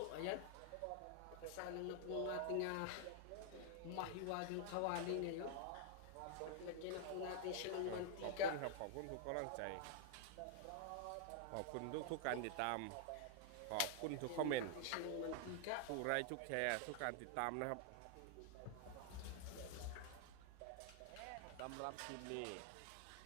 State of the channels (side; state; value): both; different; correlation 0.00